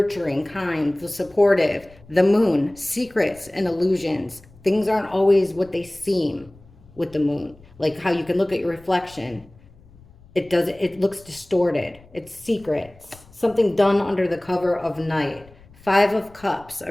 kind, the supportive. The moon. Secrets and illusions. Things aren't always what they seem with the moon. Like how you can look at your reflection. It looks distorted. It's secrets. Something done under the cover of night. Five of Cups.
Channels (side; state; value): left; noise; rumble, 25 dB below the sound